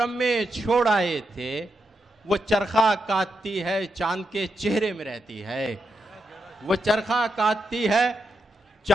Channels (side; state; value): both; normal; correlation 0.84